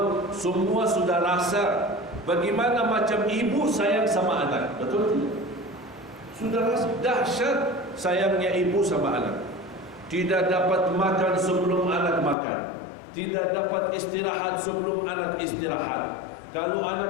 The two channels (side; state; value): right; drops out; at 12.4 s